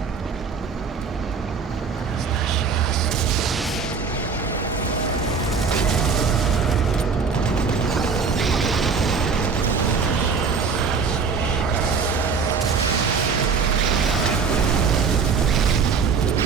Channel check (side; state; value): left; quieter; 5.3 dB